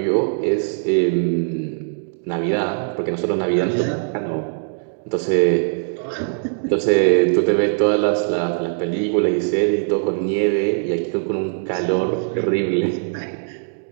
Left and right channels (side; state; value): left; silent; digital silence